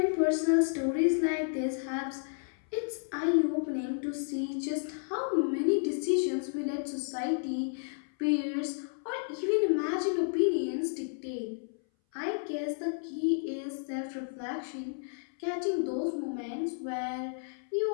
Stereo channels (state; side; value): silent; right; 57 dB below the other